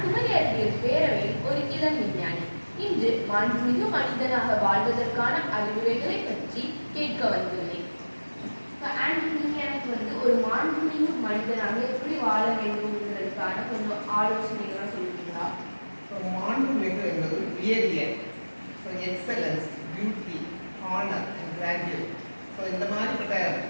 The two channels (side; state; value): both; inverted; correlation -1.00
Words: குமரி அறிவியல் பேரவையில் ஒரு இளம் விஞ்ஞானி. இன்று மாண்புமிகு மனிதனாக வாழ்வதற்கான அறிவுரைகளை பற்றி கேட்க வந்துள்ளேன். நீங்க எனக்கு ஒரு மாண்புமிகு மனிதனாக எப்படி வாழ வேண்டும்ன்றதுக்கான கொஞ்சம் ஆலோசனைகளாக சொல்லுவீங்களா? மாண்புமிகு என்பது உயரிய, excellence, beauty, honour and graduate. இந்த மாதிரிப்பட்ட